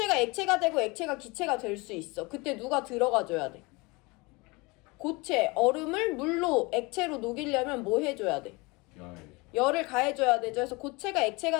액체가 되고 액체가 기체가 될 수 있어. 그때 누가 들어가줘야 돼? 고체, 얼음을 물로, 액체로 녹이려면 뭐 해줘야 돼? 열을 가해줘야 되죠. 그래서 고체가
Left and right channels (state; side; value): quieter; right; 25.7 dB